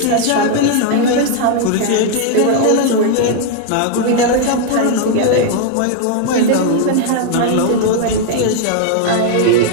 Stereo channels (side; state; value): both; different; correlation 0.00